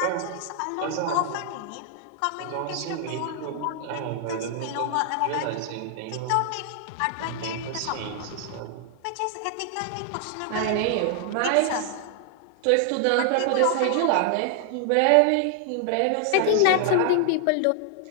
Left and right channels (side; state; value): both; different; correlation 0.00